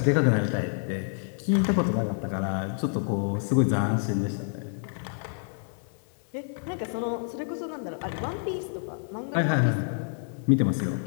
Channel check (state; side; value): silent; right; 57 dB below the other